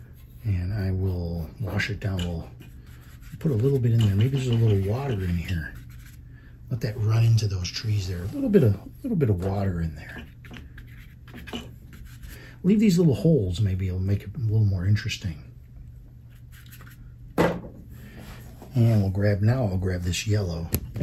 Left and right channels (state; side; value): identical; both; correlation 1.00